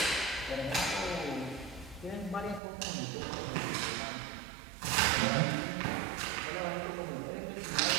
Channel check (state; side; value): drops out; left; at 2.6 s